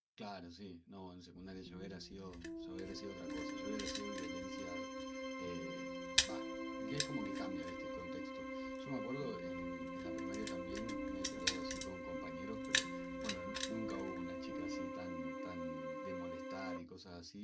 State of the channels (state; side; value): identical; both; correlation 1.00